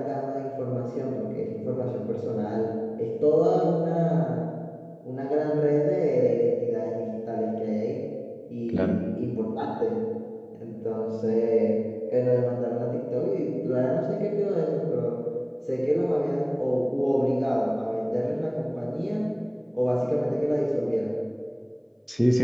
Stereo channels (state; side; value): identical; both; correlation 1.00